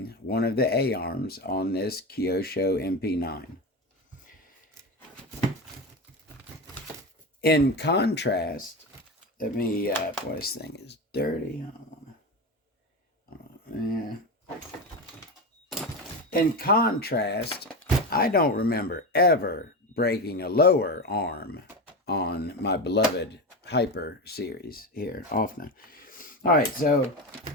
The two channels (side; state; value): both; normal; correlation 0.20